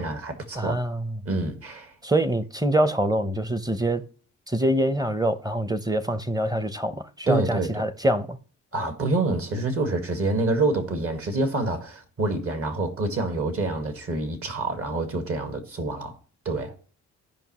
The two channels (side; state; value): both; normal; correlation 0.59